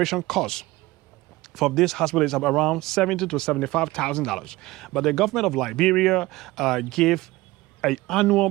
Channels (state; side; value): quieter; left; 19.6 dB